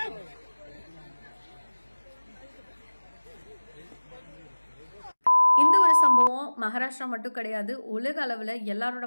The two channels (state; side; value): inverted; both; correlation -1.00